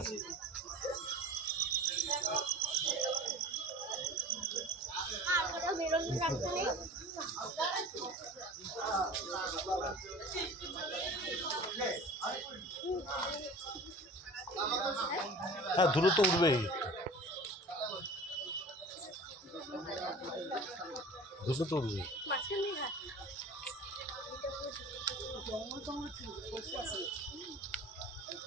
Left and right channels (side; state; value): both; normal; correlation 0.40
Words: হ্যাঁ ধুলো তো উঠবেই, ধুলো তো উঠবেই।